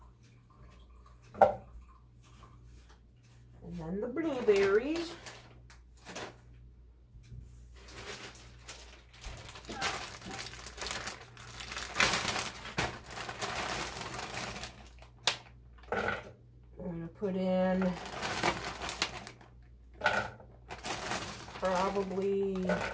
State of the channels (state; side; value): identical; both; correlation 1.00